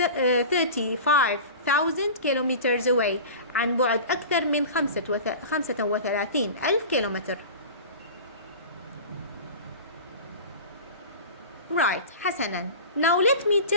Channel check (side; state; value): both; inverted; correlation -0.35